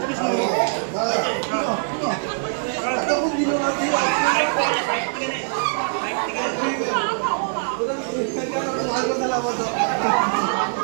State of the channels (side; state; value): left; silent; digital silence